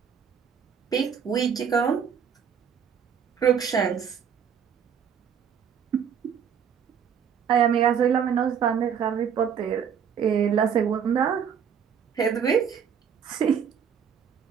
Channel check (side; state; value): left; quieter; 7.6 dB